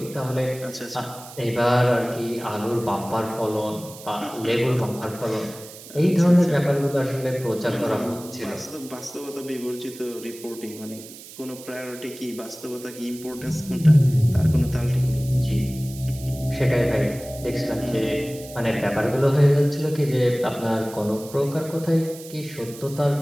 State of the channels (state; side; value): noise; right; hiss, 17 dB below the sound